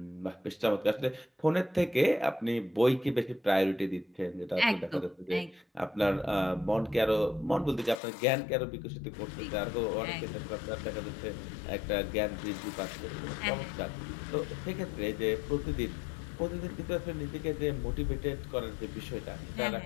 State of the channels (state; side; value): drops out; right; at 8.0 s